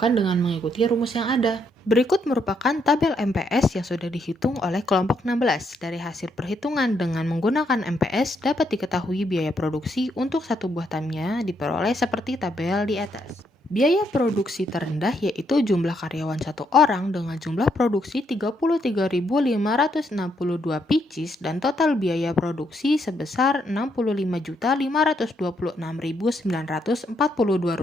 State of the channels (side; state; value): both; normal; correlation 0.75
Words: dengan mengikuti rumus yang ada. Berikut merupakan tabel MPS yang sudah dihitung oleh kelompok 16. Dari hasil perhitungan dengan menggunakan MPS dapat diketahui biaya produksi untuk satu buah tamnya diperoleh seperti tabel di atas. Biaya produksi terendah yaitu jumlah karyawan satu orang dengan jumlah produksi 33.562 pieces dan total biaya produksi sebesar